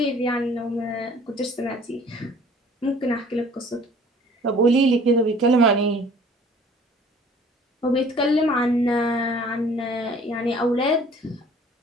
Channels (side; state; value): both; normal; correlation 0.52